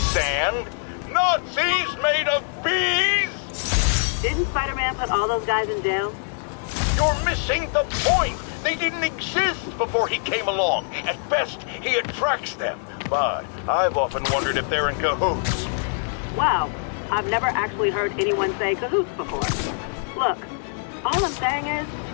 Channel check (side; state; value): right; silent; 63 dB below the other